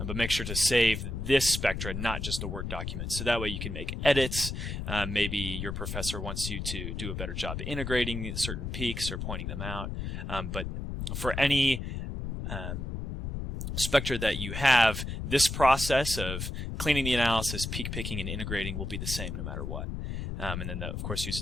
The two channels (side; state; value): left; noise; rumble, 4 dB below the sound